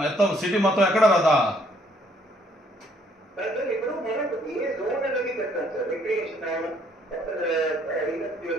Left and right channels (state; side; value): normal; both; correlation 0.66